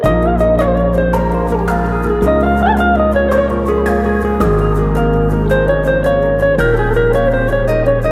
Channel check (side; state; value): both; identical; correlation 1.00